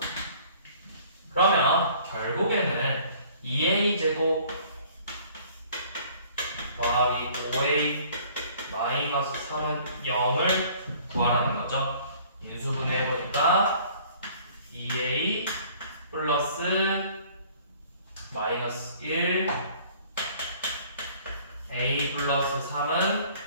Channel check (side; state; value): both; inverted; correlation -0.54